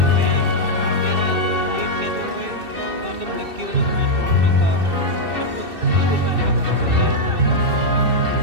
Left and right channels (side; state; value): left; late; 2.7 ms